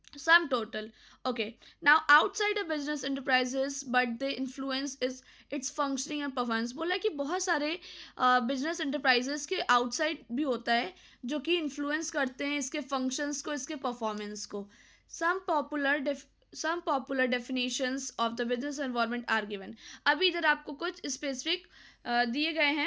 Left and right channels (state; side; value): identical; both; correlation 1.00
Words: sum total. Okay, now outside a business enterprises but they influence is its functioning and performance. बोला कि बहुत सारे बिजनेस एंटरप्राइजेस के आउटसाइड भी होता है जो कि इन्फ्लुएंस करते हैं इसके फंक्शंस को, इसके परफॉर्मेंस को। some popular definitions of the business environment are given. अभी इधर आपको कुछ स्पेसिफिक दिए गए